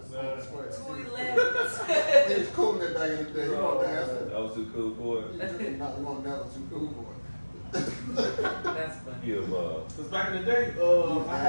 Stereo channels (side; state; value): both; inverted; correlation -1.00